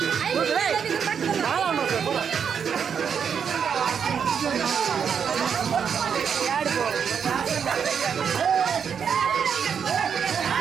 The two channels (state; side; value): quieter; left; 7.2 dB